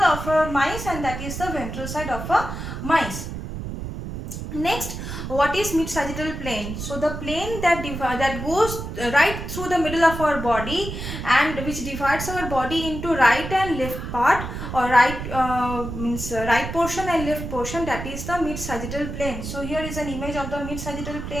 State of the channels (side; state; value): right; noise; rumble, 7 dB below the sound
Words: a mice, and that is the ventral side of a mice. Next, what is mid-sagittal plane? So the plane that goes right through the middle of our body and which divides our body into right and left part, or right means right portion and left portion, that is the mid-sagittal plane. So here is an image of the mid-sagittal